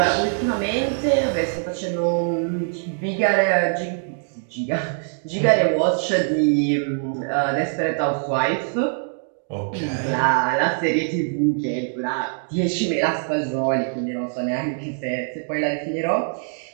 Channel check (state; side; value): silent; left; digital silence